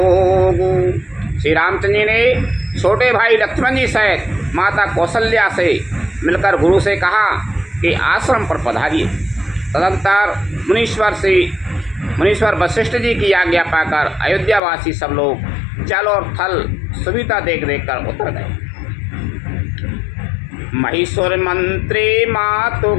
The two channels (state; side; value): drops out; right; at 14.6 s